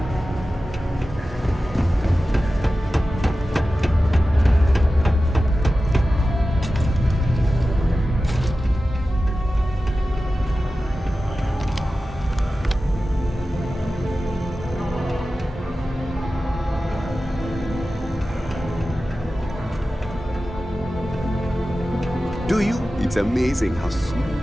Do you? It's amazing how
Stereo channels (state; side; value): normal; both; correlation 0.94